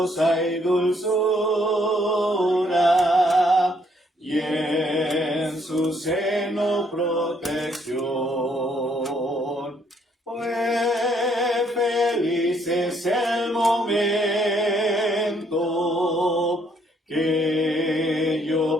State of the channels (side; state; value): both; normal; correlation 0.69